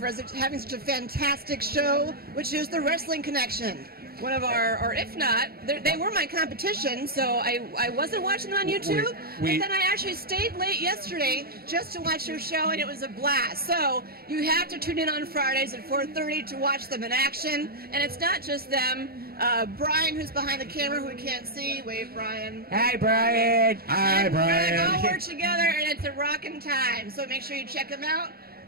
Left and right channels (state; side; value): late; left; 0.44 ms